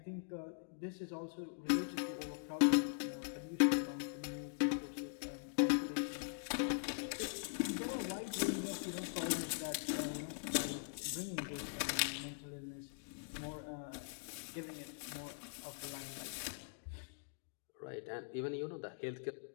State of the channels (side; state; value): right; silent; digital silence